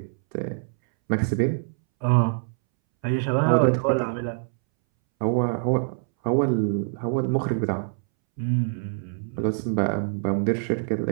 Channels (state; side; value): silent; left; 62 dB below the other